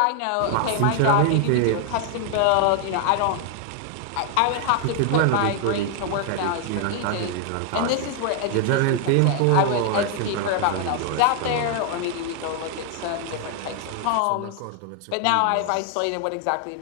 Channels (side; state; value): both; different; correlation 0.00